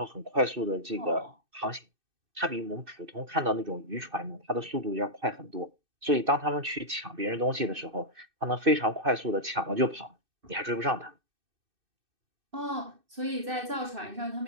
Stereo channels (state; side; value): late; left; 2.6 ms